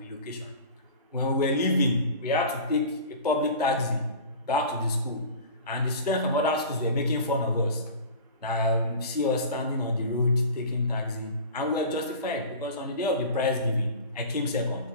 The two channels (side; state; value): both; inverted; correlation -0.36